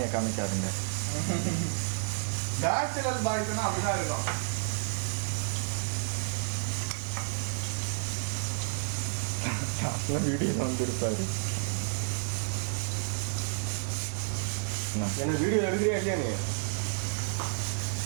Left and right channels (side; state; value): left; silent; 57 dB below the other